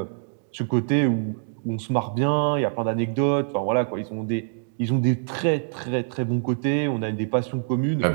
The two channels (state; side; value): silent; left; digital silence